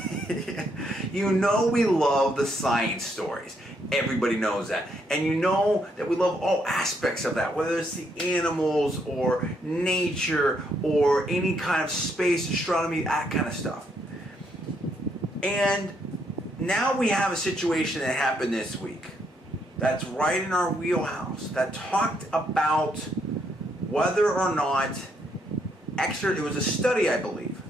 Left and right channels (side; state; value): both; normal; correlation 0.74